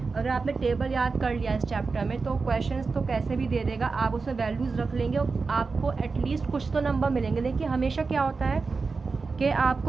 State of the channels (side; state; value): left; quieter; 4.4 dB